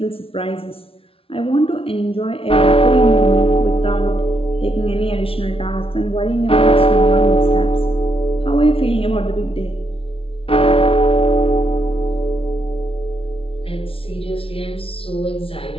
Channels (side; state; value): right; late; 0.26 ms